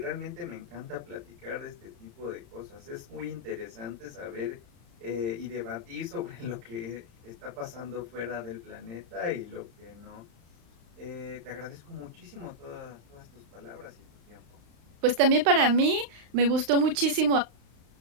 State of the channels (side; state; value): left; late; 35 ms